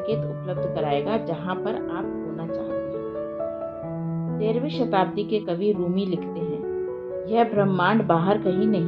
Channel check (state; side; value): identical; both; correlation 1.00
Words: उपलब्ध कराएगा जहां पर आप होना चाहते हैं। 13वीं शताब्दी के कवि रूमी लिखते हैं, यह ब्रह्मांड बाहर कहीं